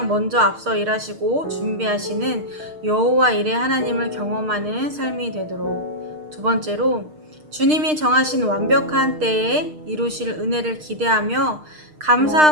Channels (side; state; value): left; late; 6.5 ms